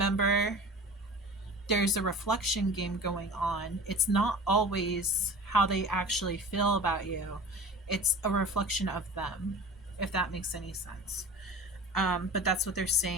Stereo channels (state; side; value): normal; both; correlation 0.38